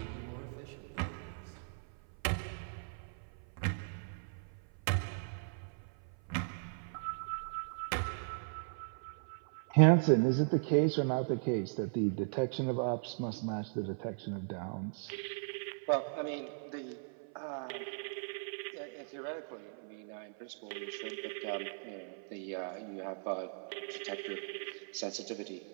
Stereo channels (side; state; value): left; silent; 53 dB below the other